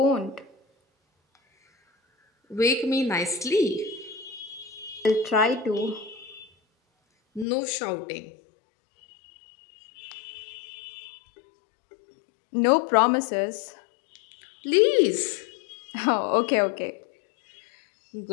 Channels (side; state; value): right; drops out; at 7.5 s